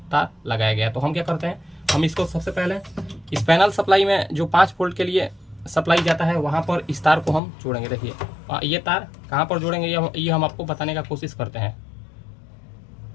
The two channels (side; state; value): right; drops out; at 7.4 s